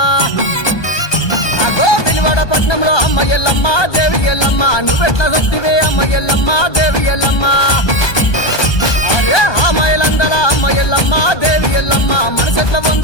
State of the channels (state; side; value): late; right; 1.2 ms